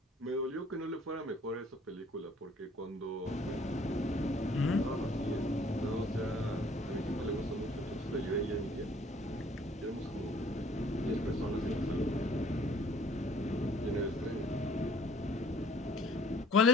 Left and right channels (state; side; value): normal; both; correlation 0.57